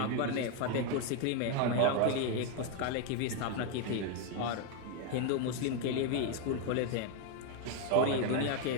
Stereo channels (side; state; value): both; different; correlation 0.01